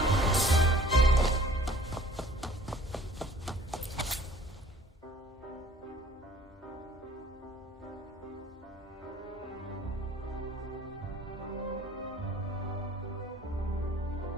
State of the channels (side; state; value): both; normal; correlation 0.52